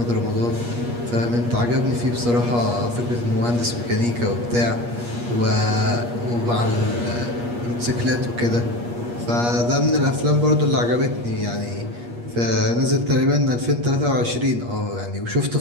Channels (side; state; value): left; late; 8.4 ms